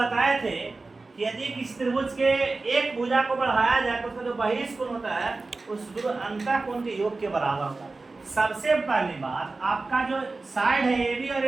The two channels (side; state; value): left; quieter; 3.6 dB